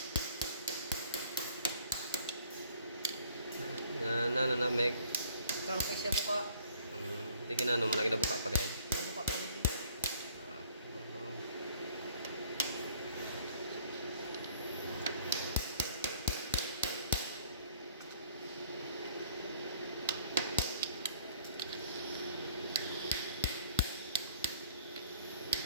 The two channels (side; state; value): both; inverted; correlation -0.56